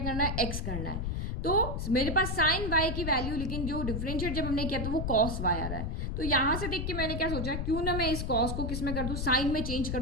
करना है, एक्स करना है। तो मेरे पास साइन वाई की वैल्यू, लेकिन जो डिफरेंशिएट जब हमने किया तो वो कॉस वाई आ रहा है। तो यहां से देख के मैंने क्या सोचा, क्यों ना मैं इस कॉस को किस में कर दूं, साइन में चेंज कर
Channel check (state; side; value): noise; left; rumble, 2 dB below the sound